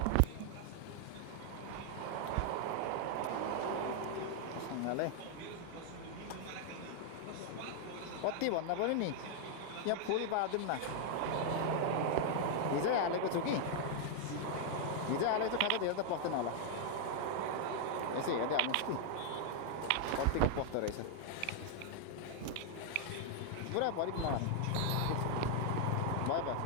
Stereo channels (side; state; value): both; different; correlation 0.00